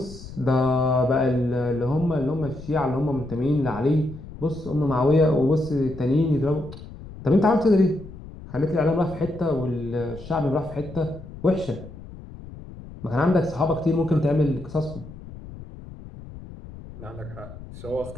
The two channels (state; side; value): noise; left; rumble, 15 dB below the sound